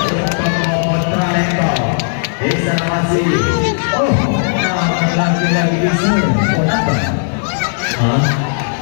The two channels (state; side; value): silent; right; 59 dB below the other